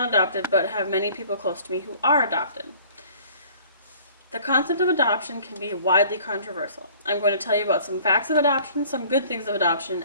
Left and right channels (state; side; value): inverted; both; correlation -0.52